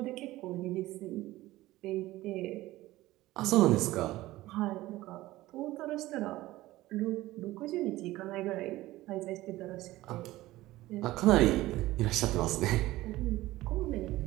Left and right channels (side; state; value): left; quieter; 17.2 dB